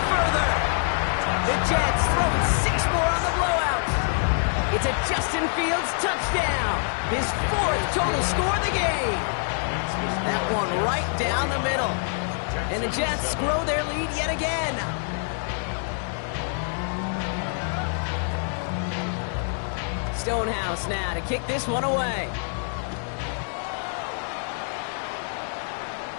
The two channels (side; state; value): right; silent; 61 dB below the other